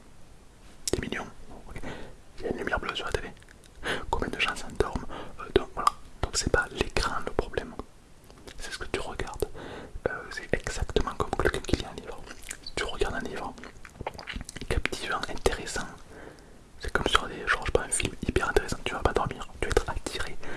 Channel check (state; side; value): identical; both; correlation 1.00